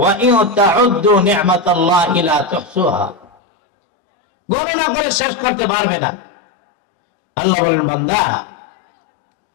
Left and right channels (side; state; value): right; drops out; at 3.2 s